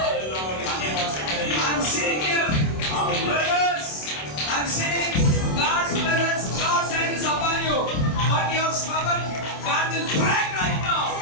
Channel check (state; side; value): late; right; 27 ms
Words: I'm seeing you. Brothers, I'm seeing God's presence, God's hand is upon you. But your stubborn, God will break right now.